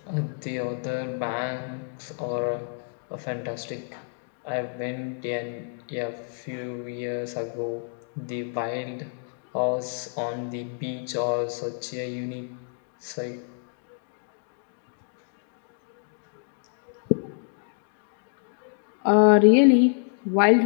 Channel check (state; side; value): silent; right; 59 dB below the other